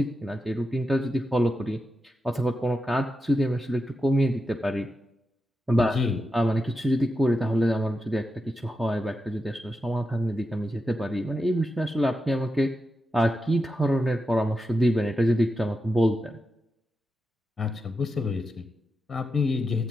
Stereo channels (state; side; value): normal; both; correlation 0.88